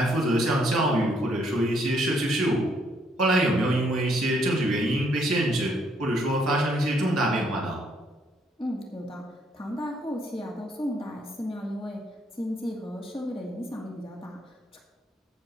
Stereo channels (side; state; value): both; normal; correlation 0.70